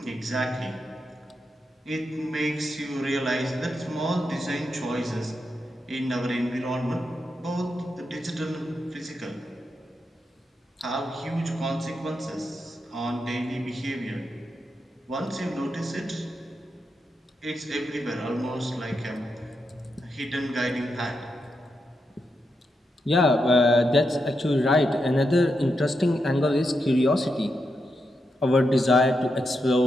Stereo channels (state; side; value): normal; both; correlation 0.85